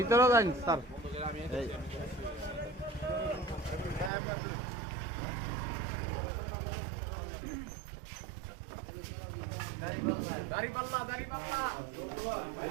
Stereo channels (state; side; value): drops out; left; at 4.1 s